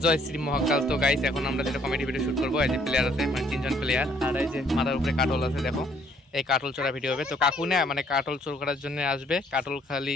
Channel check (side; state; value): both; normal; correlation 0.64